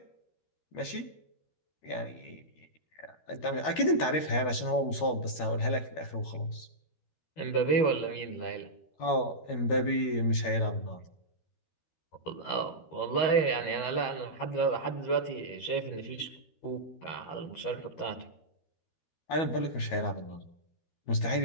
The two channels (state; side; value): late; right; 13 ms